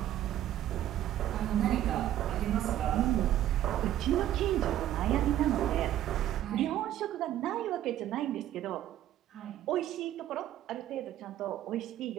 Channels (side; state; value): left; quieter; 12.4 dB